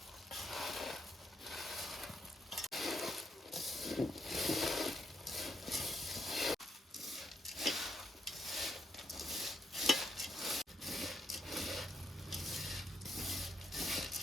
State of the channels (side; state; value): both; normal; correlation 0.77